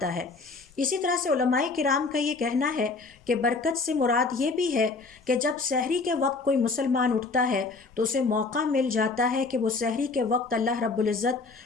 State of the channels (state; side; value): quieter; right; 4.0 dB